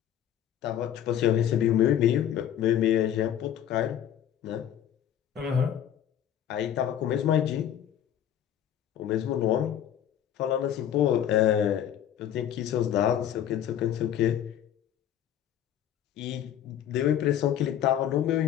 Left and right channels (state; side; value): quieter; right; 10.3 dB